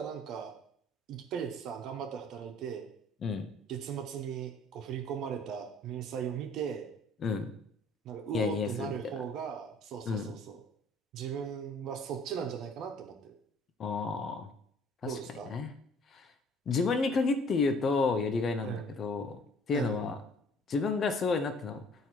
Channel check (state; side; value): normal; both; correlation 0.55